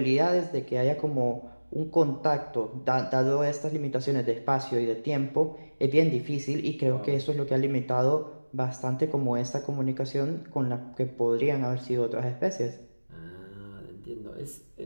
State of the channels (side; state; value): both; inverted; correlation -1.00